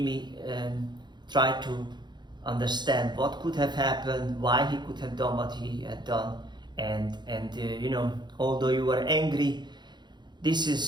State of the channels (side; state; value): left; late; 0.21 ms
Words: me try to understand what could have happened, why he could have done what he had done. And you know, although you were angry, this